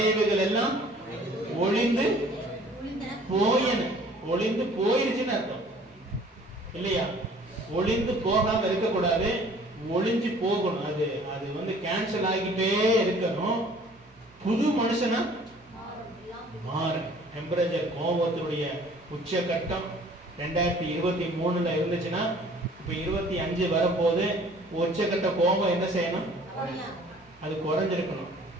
எல்லாம் ஒளிந்து போயிருச்சுன்னு அர்த்தம் இல்லையா? ஒளிந்து போகாம இருக்கக்கூடாது, ஒளிஞ்சு போகணும். அது கேன்சல் ஆகிட்டே இருக்கணும். புது மனுஷனா மாறு. டெம்பரேச்சர் கோபத்தினுடைய உச்சகட்டம் 2023 இருந்துச்சுன்னா இப்ப 25 வரப்போது உச்சக்கட்ட கோபம் என்ன செய்யணும்? அது குறைஞ்சிருக்கணும்.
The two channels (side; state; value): both; normal; correlation 0.52